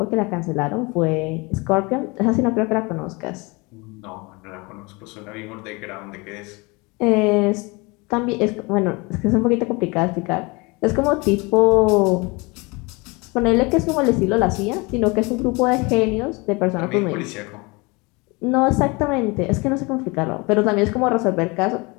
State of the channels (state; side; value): quieter; right; 26.7 dB